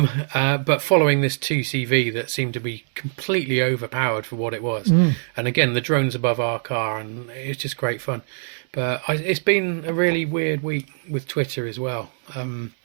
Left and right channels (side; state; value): left; silent; digital silence